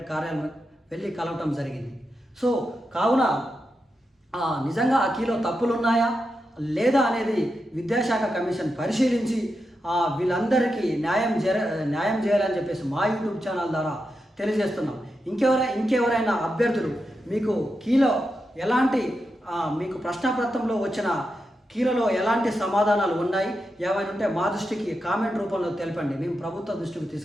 కార్యాలయం వెళ్ళి కలవటం జరిగింది. సో కావున నిజంగా ఆ కీలో తప్పులు ఉన్నాయా లేదా అనేది విద్యాశాఖ కమిషన్ పరిశీలించి వీళ్ళందరికీ న్యాయం చేయాలని చెప్పేసి మా యూట్యూబ్ ఛానల్ ద్వారా తెలియజేస్తున్నాం. ఇంకెవరైనా అభ్యర్థులు మీకు మీకు ప్రశ్నపత్రంలో వచ్చిన కీలలో ఎలాంటి సమాధానాలు ఉన్నాయి ఏమైనా ఉంటే మా దృష్టికి కామెంట్ రూపంలో తెలపండి, మేము ప్రభుత్వ దృష్టికి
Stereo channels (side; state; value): both; normal; correlation 0.87